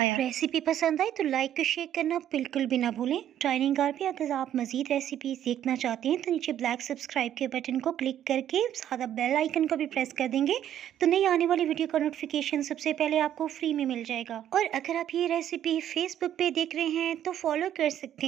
रेसिपी पसंद आई तो लाइक और शेयर करना बिल्कुल भी ना भूलें। डाइनिंग कार पे अगर आप मजीद रेसिपीज देखना चाहते हैं तो नीचे ब्लैक सब्सक्राइब के बटन को क्लिक करके सादा बेल आइकन को भी प्रेस कर देंगे तो नई आने वाली वीडियो का नोटिफिकेशन सबसे पहले आपको फ्री में मिल जाएगा। और अगर आप ये रेसिपी फेसबुक पे देख रहे हैं तो फॉलो कर सकते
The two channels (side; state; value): left; quieter; 10.9 dB